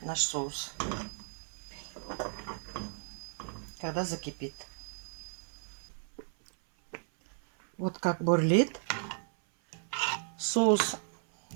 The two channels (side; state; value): left; silent; 55 dB below the other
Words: наш соус, когда закипит. Вот как бурлит соус.